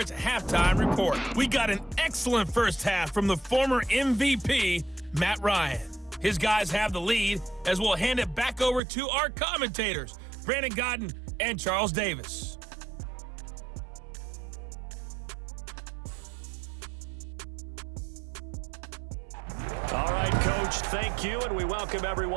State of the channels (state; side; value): drops out; left; at 8.8 s